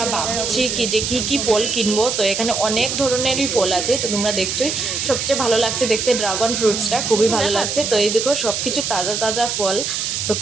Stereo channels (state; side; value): noise; right; hiss, 2 dB below the sound